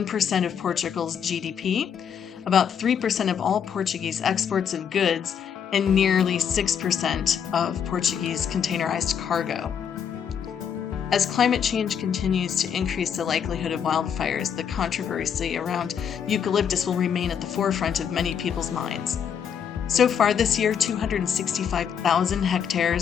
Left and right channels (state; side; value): quieter; right; 7.8 dB